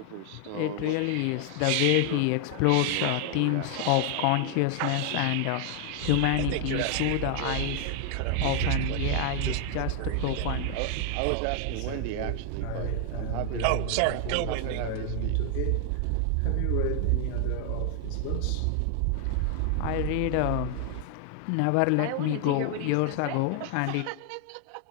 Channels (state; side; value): different; both; correlation 0.00